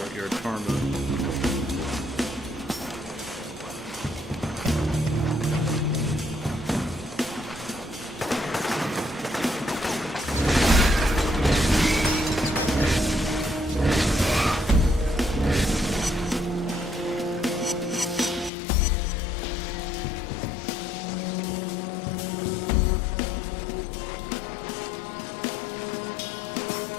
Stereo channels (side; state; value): right; drops out; at 18.5 s